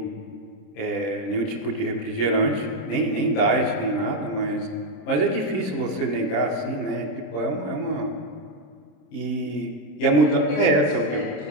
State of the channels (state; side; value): late; right; 26 ms